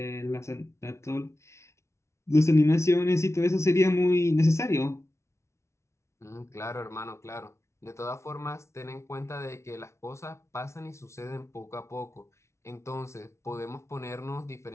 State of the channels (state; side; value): late; right; 0.13 ms